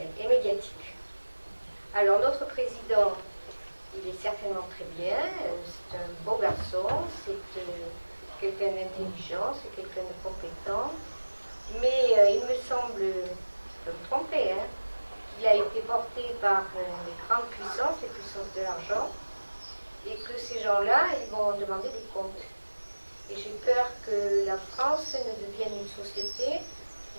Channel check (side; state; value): both; inverted; correlation -1.00